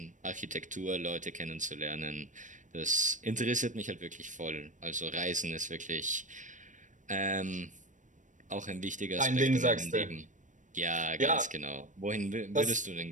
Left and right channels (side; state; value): left; late; 0.37 ms